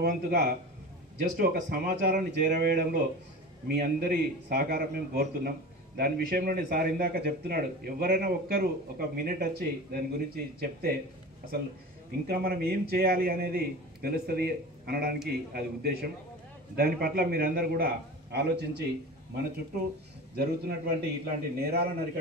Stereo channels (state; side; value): normal; both; correlation 0.33